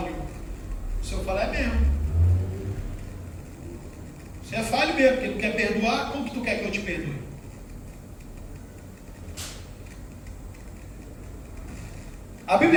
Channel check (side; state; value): both; identical; correlation 1.00